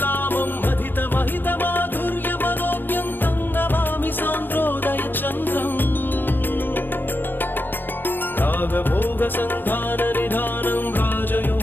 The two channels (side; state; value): right; late; 0.095 ms